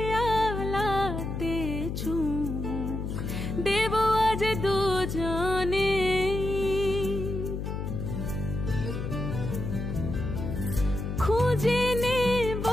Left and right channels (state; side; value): noise; left; hum, 4 dB below the sound